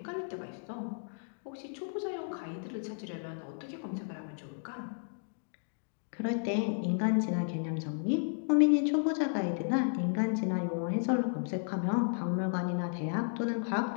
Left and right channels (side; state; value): right; silent; digital silence